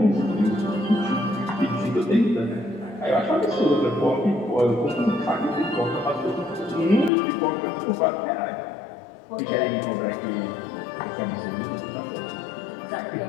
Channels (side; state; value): right; drops out; at 7.1 s